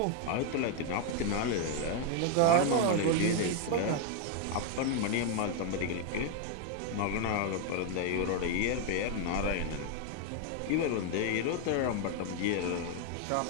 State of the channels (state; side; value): different; both; correlation 0.01